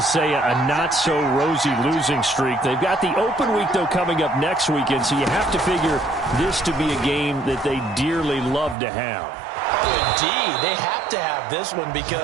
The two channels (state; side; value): drops out; left; at 8.8 s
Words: say a not-so-rosy losing streak. They've got the open week, though, coming up next weekend, so you have to figure this to be a game that they dearly love to have. Oh, indeed. They have to have this one